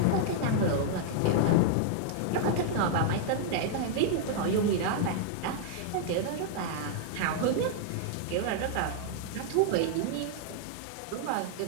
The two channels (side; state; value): both; different; correlation -0.01